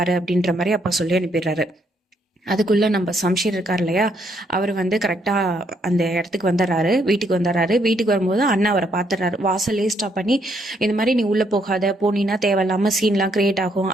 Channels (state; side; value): normal; both; correlation 0.72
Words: அப்படின்ற மாதிரி அப்பா சொல்லி அனுப்பிடுறாரு. அதுக்குள்ளே நம்ம சம்ஷீர் இருக்கார் இல்லையா, அவர் வந்து கரெக்டாக அந்த இடத்துக்கு வந்துடுறாரு. வீட்டுக்கு வந்துடுறாரு. வீட்டுக்கு வரும்போது அண்ணா அவரை பார்த்துடுறாரு. வாசல்லே ஸ்டாப் பண்ணி, இந்த மாதிரி நீ உள்ளே போகாத, போனீன்னா தேவையில்லாமல் சீன்லாம் கிரியேட் ஆகும்,